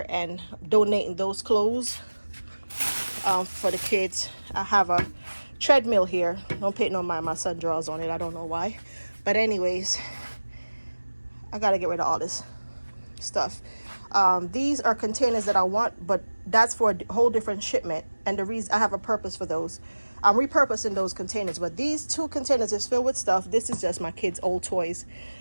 and donating those clothes for the kids. I have a treadmill here. Don't pay no mind, my son draws on it. I don't know why. But anyways, I got to get rid of all this stuff. These are containers that I want, but that's for a whole different shipment. And the reason I have a purpose for those. I'm repurposing those containers, but these 2 containers is filled with stuff. This is just my kids' old toys.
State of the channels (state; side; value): inverted; both; correlation -1.00